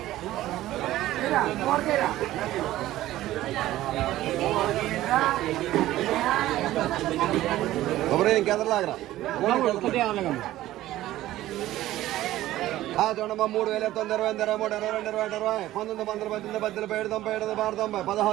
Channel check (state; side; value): quieter; left; 15.1 dB